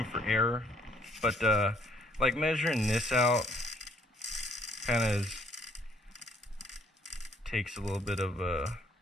error. But like measuring this out kind of takes a little bit of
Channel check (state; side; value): normal; both; correlation 0.64